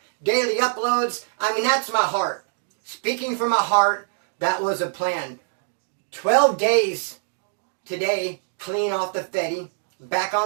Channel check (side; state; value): left; silent; digital silence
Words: Daily uploads. I mean, that's my heart. Speaking from my heart, that was a plan. 12 days today, clean off the Fetty. Back